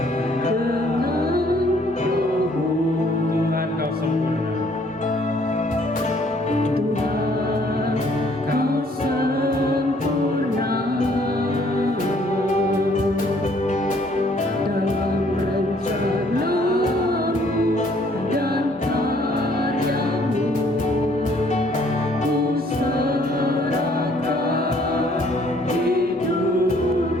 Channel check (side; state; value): both; normal; correlation 0.62